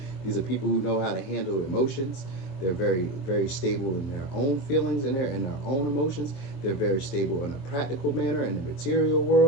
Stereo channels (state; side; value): late; right; 23 ms